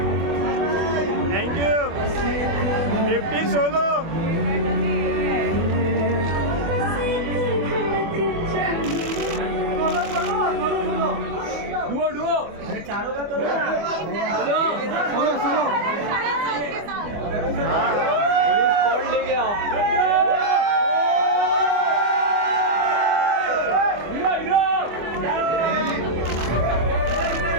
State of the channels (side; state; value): left; late; 24 ms